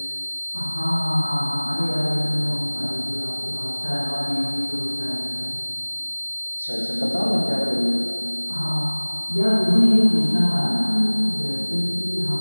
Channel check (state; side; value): inverted; both; correlation -1.00